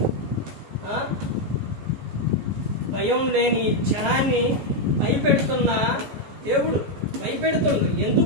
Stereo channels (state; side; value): late; left; 14 ms